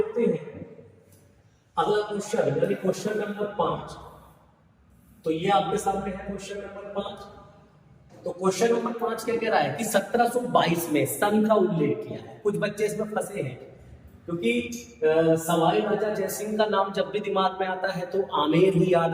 हैं अगला क्वेश्चन, यानी क्वेश्चन नंबर 5। तो ये आपके सामने है क्वेश्चन नंबर 5। तो क्वेश्चन नंबर 5 क्या कह रहा है कि 1722 में सन का उल्लेख किया है। कुछ बच्चे इसमें फंसे हैं क्योंकि सवाई राजा जयसिंह का नाम जब भी दिमाग में आता है तो आमेर ही याद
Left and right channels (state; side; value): identical; both; correlation 1.00